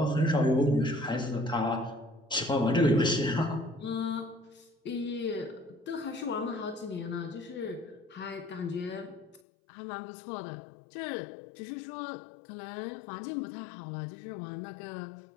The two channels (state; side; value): drops out; right; at 9.4 s